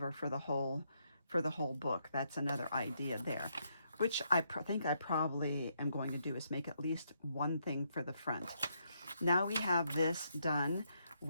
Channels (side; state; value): both; inverted; correlation -0.77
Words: for the whole book. That's another idea there, which I think I probably am going to do, is make at least one thing for the front. Now we have this done.